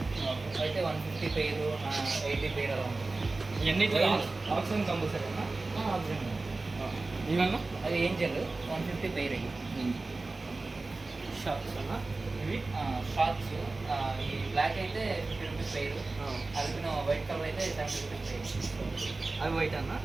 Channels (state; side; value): quieter; left; 3.4 dB